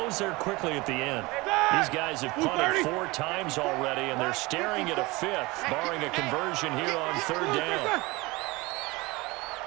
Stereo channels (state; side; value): quieter; left; 22.9 dB